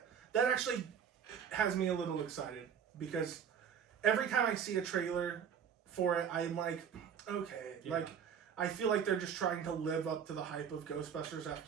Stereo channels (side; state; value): left; quieter; 7.8 dB